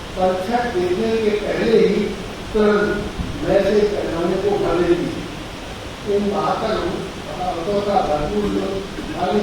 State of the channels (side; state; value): both; identical; correlation 1.00